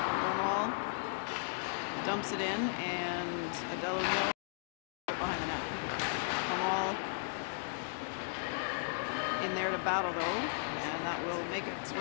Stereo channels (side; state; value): right; silent; digital silence